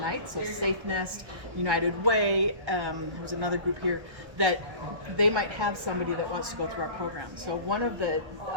so Safe Nest, United Way, there's another group here, that they might have somebody that wants to go through our program. So one of the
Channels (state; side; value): late; left; 1.1 ms